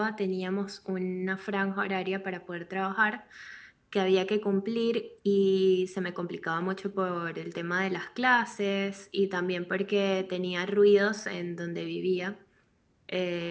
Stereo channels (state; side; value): identical; both; correlation 1.00